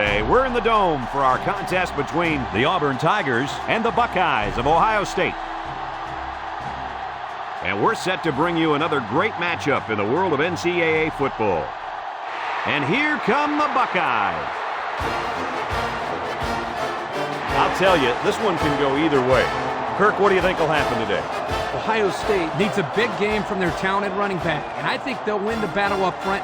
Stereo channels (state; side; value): identical; both; correlation 1.00